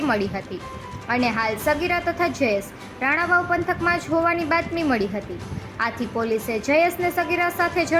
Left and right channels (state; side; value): identical; both; correlation 1.00